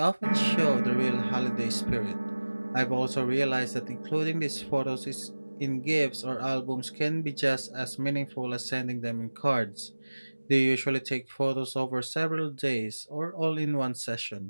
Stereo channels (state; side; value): inverted; both; correlation -1.00